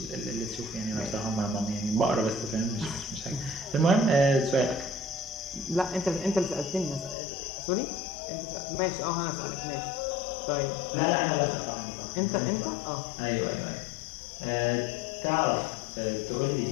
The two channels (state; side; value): drops out; right; at 7.2 s